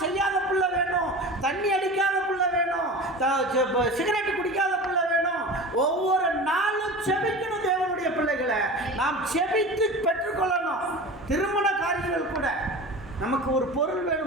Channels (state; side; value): normal; both; correlation 0.33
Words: செய்யாத பிள்ளை வேணும், தண்ணி அடிக்காத பிள்ளை வேணும், சிகரெட்டு குடிக்காத பிள்ளை வேணும். ஒவ்வொரு நாளும் ஜெபிக்கணும். தேவனுடைய பிள்ளைகளை நாம் ஜெபித்து பெற்றுக்கொள்ளணும். திருமண காரியங்கள் கூட நமக்கு ஒரு பொருள்